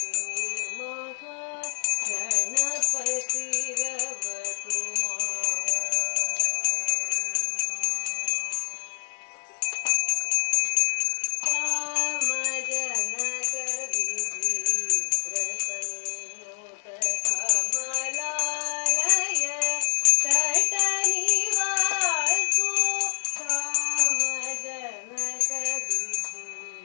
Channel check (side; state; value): right; silent; 61 dB below the other